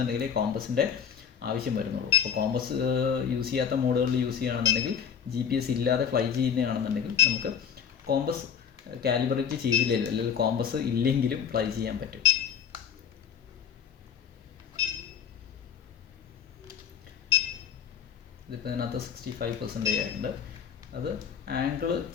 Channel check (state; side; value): quieter; right; 7.6 dB